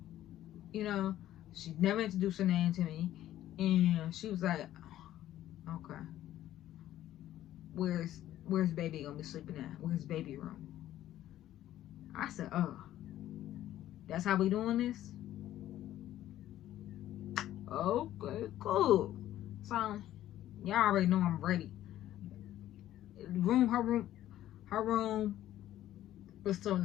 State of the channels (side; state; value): right; quieter; 13.1 dB